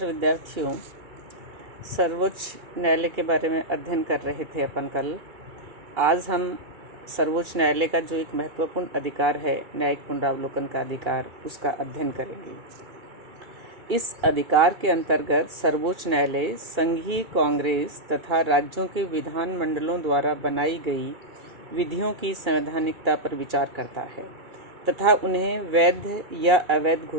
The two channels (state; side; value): late; left; 2.4 ms